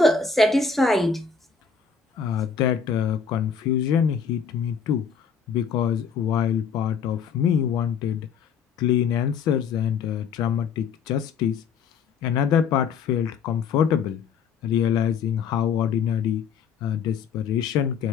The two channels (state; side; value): quieter; right; 6.3 dB